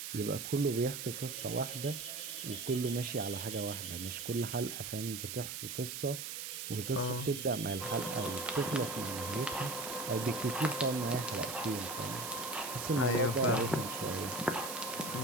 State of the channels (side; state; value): right; noise; hiss, 6 dB below the sound